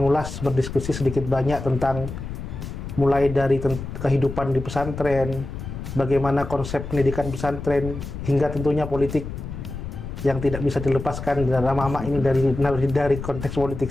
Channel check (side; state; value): left; noise; rumble, 8 dB below the sound